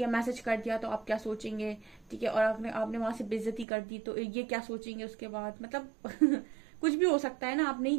मैसेज कर दिया तो आप क्या सोचेंगे, ठीक है। और आपने वहां से बेइज्जती कर दी तो ये क्या सोचेंगे उसके बाद, मतलब कुछ भी हो सकता है ना, आप नहीं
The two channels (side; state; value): left; drops out; at 3.7 s